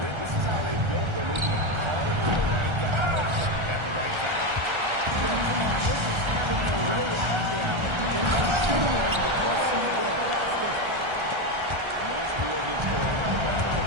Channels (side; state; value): left; late; 1.3 ms